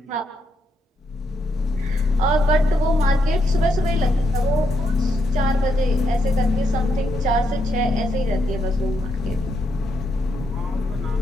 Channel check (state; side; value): normal; both; correlation 0.79